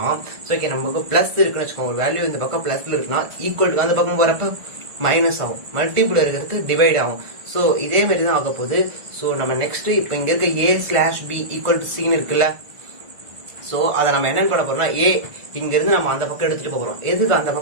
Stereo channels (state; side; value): late; left; 1.5 ms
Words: சோ ஓகே நமக்கு பிளஸ் இருக்குன்னு வச்சுக்கோங்க, ஒரு வேல்யூ இந்த பக்கம் பிளஸ்ல இருக்குன்னா ஈக்குவல் டு அந்த பக்கம் போறப்ப மைனஸ் ஆகும், மல்டிபிள் இருக்கிறது டிவைட் ஆகும். சோ இதே மாதிரி தான் ஆக போகுது. சோ நம்ம நெக்ஸ்ட் இப்ப இங்க இருக்க a/b ஈக்குவல் டு c இருக்குல்ல, சோ அதை நம்ம என்ன பண்ண போறோம்னா, ஏ இங்க இருந்து நம்ம அந்த பக்கம் எடுத்துட்டு போறோம். எதுக்கு அந்த